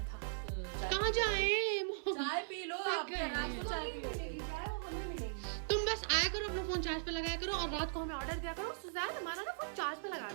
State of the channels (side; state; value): left; silent; 52 dB below the other